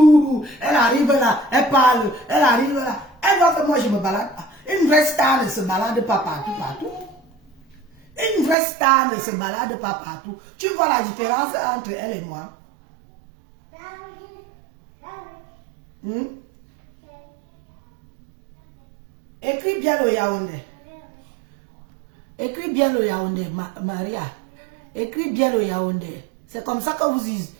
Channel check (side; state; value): left; drops out; at 8.6 s